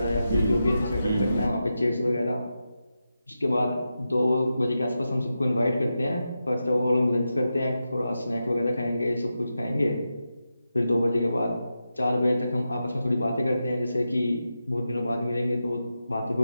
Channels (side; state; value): both; inverted; correlation -0.89